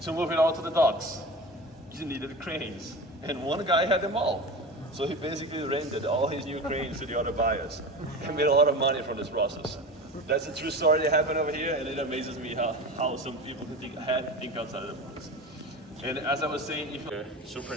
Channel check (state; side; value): normal; both; correlation 0.30